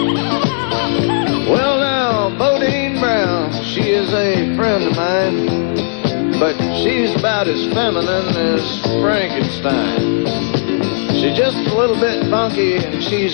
But she's about as feminine as Frankenstein. She's just a little bit funky and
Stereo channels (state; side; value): silent; right; digital silence